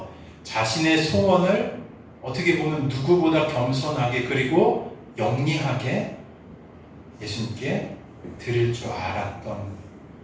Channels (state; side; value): identical; both; correlation 1.00